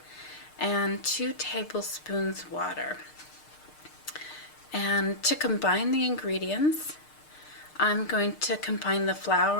and 2 tablespoons water. And to combine the ingredients, I'm going to combine the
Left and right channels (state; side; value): late; right; 6.6 ms